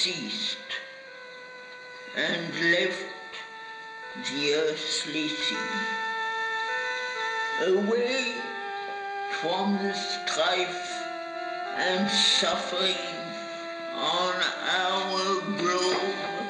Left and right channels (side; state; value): both; identical; correlation 1.00